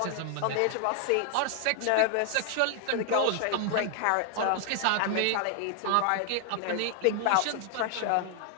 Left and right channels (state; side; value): different; both; correlation 0.00